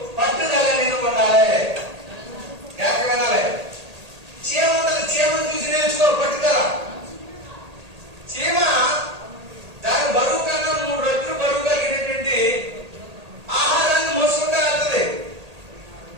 పట్టుదల నిన్ను ఉండాలి. జాగ్రత్త వినాలి. చీమ ఉంటుంది, చీమను చూసి నేర్చుకో పట్టుదల. చీమ దాని బరువు కన్నా 3 రెట్లు బరువు కలిగినటువంటి ఆహారాన్ని మోసుకుంటూ వెళ్తుంది.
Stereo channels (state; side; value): late; left; 1.8 ms